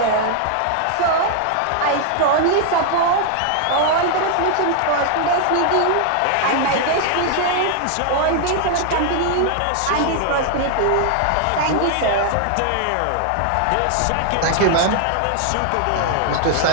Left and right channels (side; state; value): both; different; correlation 0.00